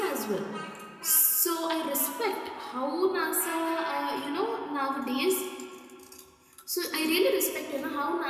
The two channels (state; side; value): identical; both; correlation 1.00